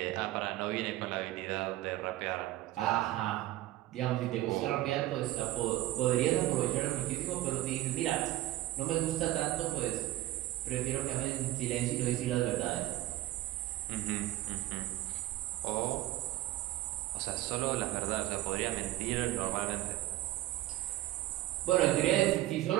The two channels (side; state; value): left; quieter; 15.7 dB